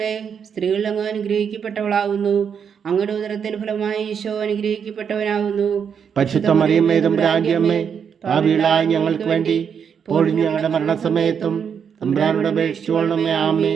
സ്ത്രീകൾ അങ്ങ് അനുഗ്രഹിക്കപ്പെട്ടവളാകുന്നു. അങ്ങയുടെ ഉദരത്തിൻ ഫലമായി ഈശോ അനുഗ്രഹിക്കപ്പെട്ടവനാകുന്നു. പരിശുദ്ധ മറിയമ്മേ തമ്പുരാന്റെ അമ്മേ, പാപികളായ ഞങ്ങൾക്ക് വേണ്ടി ഇപ്പോഴും ഞങ്ങളുടെ മരണസമയത്തും തമ്പുരാനോട് അപേക്ഷിച്ചുകൊള്ളണമേ.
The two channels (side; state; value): left; quieter; 7.3 dB